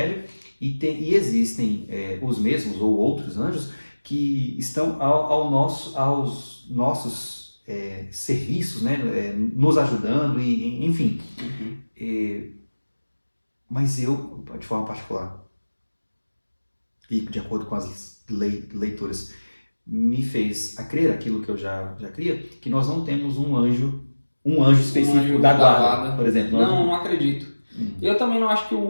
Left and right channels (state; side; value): inverted; both; correlation -1.00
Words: e existem os mesmos ou outros anjos que estão aos nossos serviços, né? Nos ajudando, enfim. Mas eu, de forma particular, e de acordo com as leituras, me fez a crer aquilo que eu já cria, que nós não temos um anjo específico anjo da da guarda, guarda. por exemplo. Não acredito. Eu também não acho que